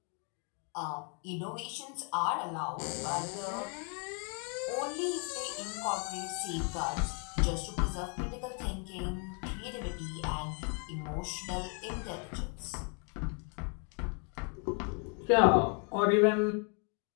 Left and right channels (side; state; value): right; quieter; 38.5 dB